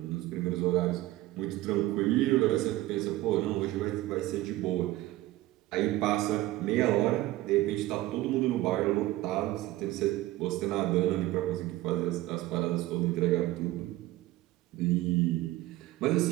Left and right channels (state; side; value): quieter; left; 16.8 dB